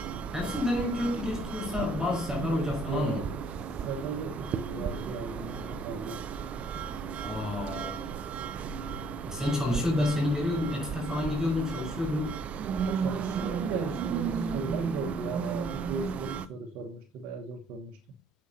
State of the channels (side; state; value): both; normal; correlation 0.63